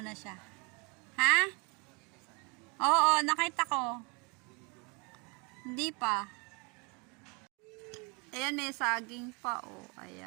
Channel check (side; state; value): left; quieter; 29.8 dB